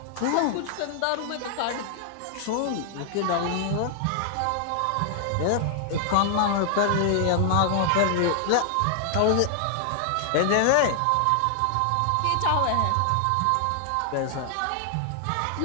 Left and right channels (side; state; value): both; different; correlation 0.00